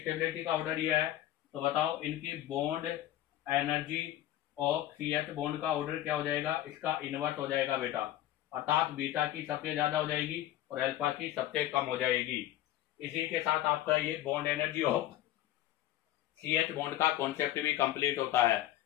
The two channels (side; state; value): right; quieter; 13.5 dB